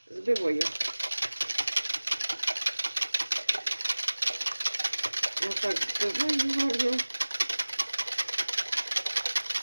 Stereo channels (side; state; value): both; inverted; correlation -1.00